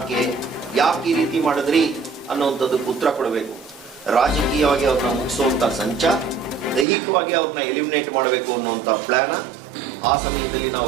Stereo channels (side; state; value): left; drops out; at 6.9 s